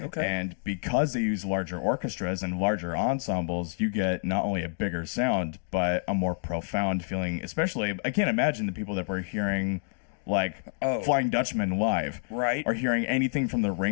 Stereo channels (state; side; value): silent; right; 59 dB below the other